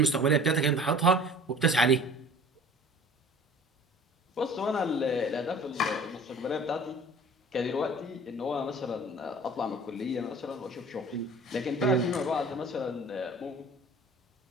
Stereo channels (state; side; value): normal; both; correlation 0.45